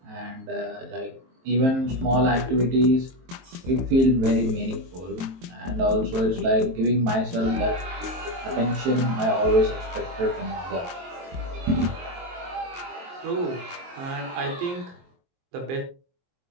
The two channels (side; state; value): left; late; 23 ms